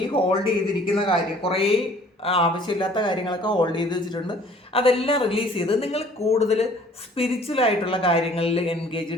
ഈ ഹോൾഡ് ചെയ്തിരിക്കുന്ന കാര്യം, കുറേ ആവശ്യമില്ലാത്ത കാര്യങ്ങളൊക്കെ ഹോൾഡ് ചെയ്ത് വെച്ചിട്ടുണ്ട്, അതെല്ലാം റിലീസ് ചെയ്ത് നിങ്ങൾ കൂടുതൽ സ്പിരിച്വലായിട്ടുള്ള കാര്യങ്ങളിൽ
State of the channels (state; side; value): normal; both; correlation 0.54